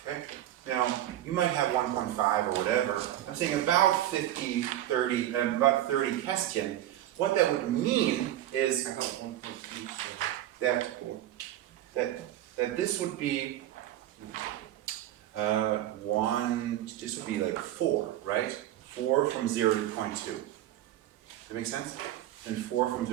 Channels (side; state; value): left; quieter; 13.1 dB